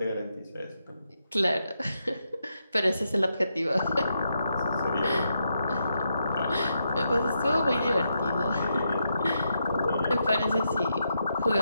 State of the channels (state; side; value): inverted; both; correlation -0.83